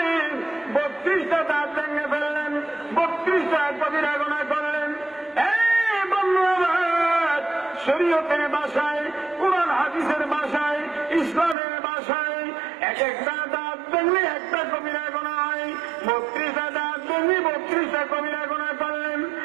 32টা দাঁত ভেঙে ফেললেন, 32টা কবিরা গুনাহ করলেন। শরীয়তের ভাষায়, কুরআন হাদিসের ভাষায়, ইসলামের ভাষায় এক একটা দাঁত ভেঙলে একটা কবিরা গুনাহ হয়, 32টা দাঁত ভেঙে 32টা কবিরা গুনাহ করলেন।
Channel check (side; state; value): left; drops out; at 11.6 s